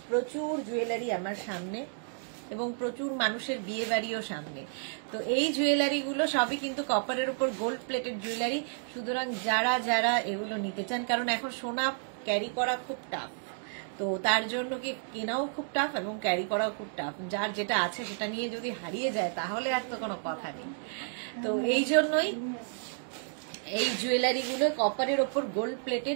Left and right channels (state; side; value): silent; left; digital silence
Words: প্রচুর জুয়েলারি আমার সামনে এবং প্রচুর মানুষের বিয়ে বাড়িও সামনে। তো এই জুয়েলারি গুলো সবই কিন্তু কপারের উপর গোল্ড প্লেটেড জুয়েলারি। সুতরাং যারা যারা এগুলো নিতে চান, কারণ এখন সোনা ক্যারি করা খুব টাফ, তো তার জন্য কি কেনাও খুব টাফ এবং ক্যারি করাও খুব টাফ। যার যেটা আছে সেটা নিয়ে যদি হারিয়ে যায় তাহলে আর তো কোনো কথা নেই। তো এই জন্যই এই জুয়েলারি গুলো কপারের ওপর গোল্ড